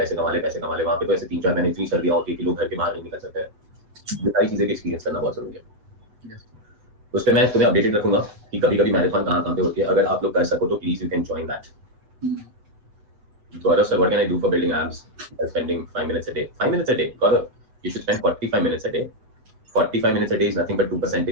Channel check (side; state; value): left; late; 7.8 ms